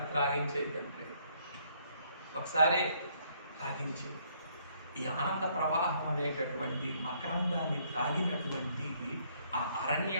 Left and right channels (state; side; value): inverted; both; correlation -0.67